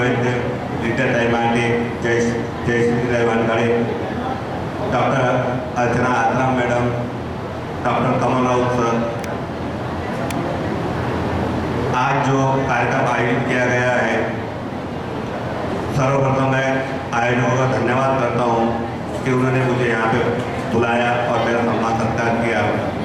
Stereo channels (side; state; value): both; identical; correlation 1.00